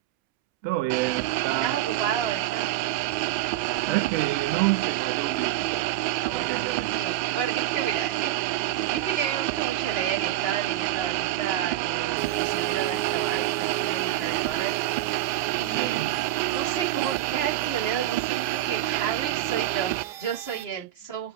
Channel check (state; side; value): quieter; left; 14.1 dB